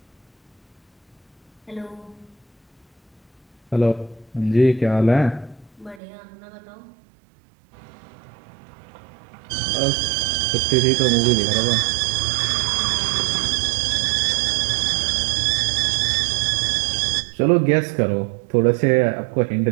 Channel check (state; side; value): drops out; left; at 6.0 s